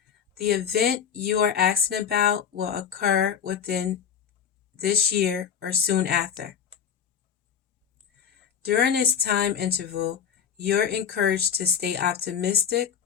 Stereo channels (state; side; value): quieter; right; 7.8 dB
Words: The event you are asking about will occur within this year or soon after. During this time interval, you're encouraged to stay optimistic